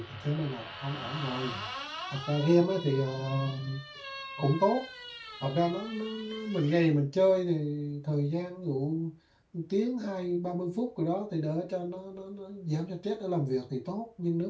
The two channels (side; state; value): both; identical; correlation 1.00